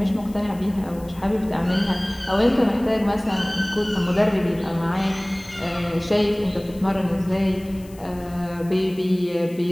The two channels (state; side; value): noise; left; hiss, 24 dB below the sound